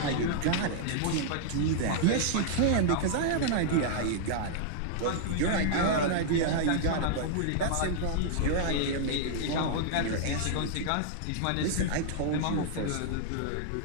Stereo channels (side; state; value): both; different; correlation -0.01